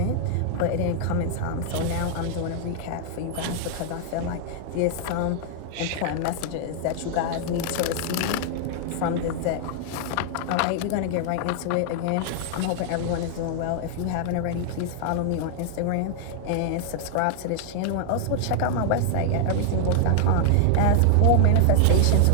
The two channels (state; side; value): different; both; correlation 0.00